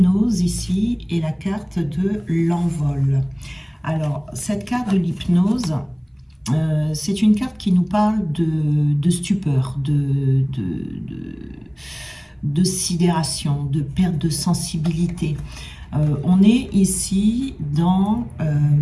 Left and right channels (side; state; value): both; identical; correlation 1.00